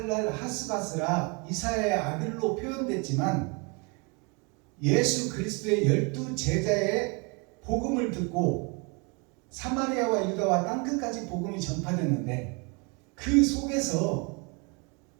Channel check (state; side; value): quieter; left; 31.5 dB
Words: 하스바스라 이사야의 아들로 표현됐지만 예수 그리스도의 12 제자의 복음을 듣고 사마리아와 유다와 땅끝까지 복음이 전파됐는데 그 속에서